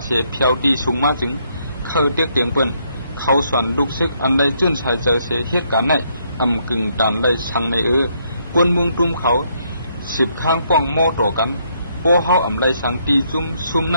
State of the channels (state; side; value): inverted; both; correlation -0.73